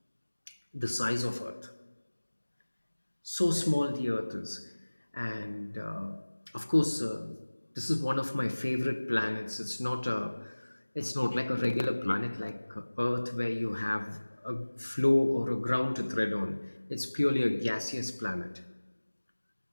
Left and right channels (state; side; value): inverted; both; correlation -1.00